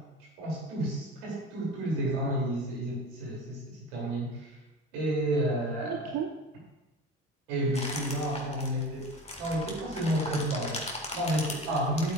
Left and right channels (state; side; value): normal; both; correlation 0.34